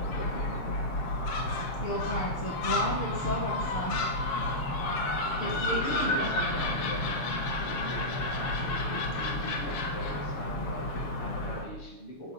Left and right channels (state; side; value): late; right; 6.8 ms